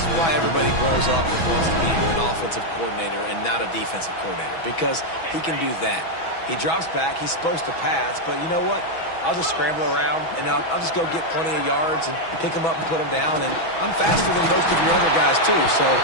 why everybody grows up and wants to be an offensive coordinator and not a defensive coordinator, because he can do that. He drops back. He's supposed to pass, but you know what? I'll just scramble around, and I'll just go get plenty of yards and pick them up and put them down, and I'm faster than most of your other guys, too, so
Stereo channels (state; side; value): late; right; 6.1 ms